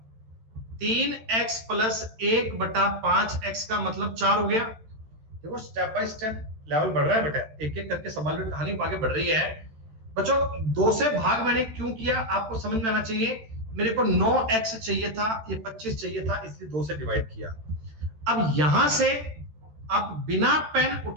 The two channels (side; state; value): left; late; 13 ms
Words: 3x प्लस 1 बटा 5x का मतलब 4 हो गया। देखो स्टेप बाय स्टेप लेवल बढ़ रहा है बेटा, एक एक करके सवाल में कहानी आगे बढ़ रही है बच्चों। 2 से भाग मैंने क्यों किया आपको समझ में आना चाहिए। मेरे को 9x चाहिए था, ये 25 चाहिए था, इसलिए 2 से डिवाइड किया। अब यहां से आप बिना पेन